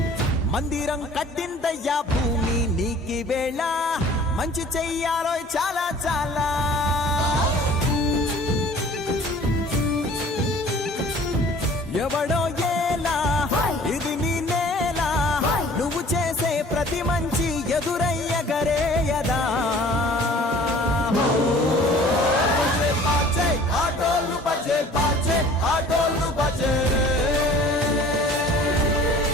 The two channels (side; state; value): both; normal; correlation 0.49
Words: మందిరం కట్టిందయ్యా భూమి నీకి వేళ మంచి చెయ్యాలో చాలా చాలా ఎవడో ఏలా ఇది నీ నేల నువ్వు చేసే ప్రతి మంచి ఎదురయ్యగరేయదా ఆటోలు బజే బాజే ఆటోలు బజే